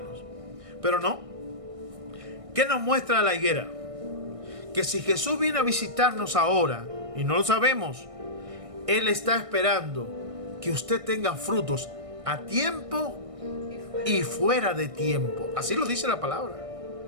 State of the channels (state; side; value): late; left; 1.6 ms